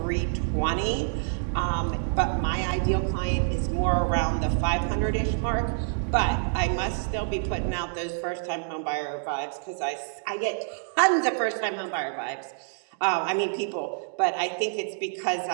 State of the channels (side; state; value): left; silent; digital silence